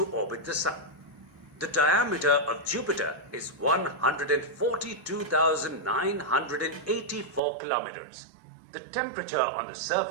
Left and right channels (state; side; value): drops out; left; at 7.4 s